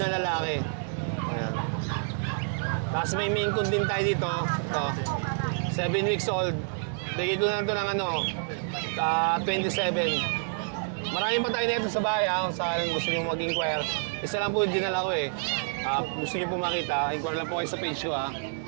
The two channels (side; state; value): left; silent; digital silence